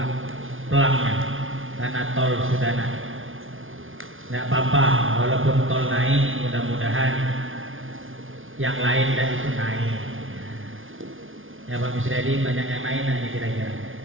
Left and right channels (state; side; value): late; left; 0.58 ms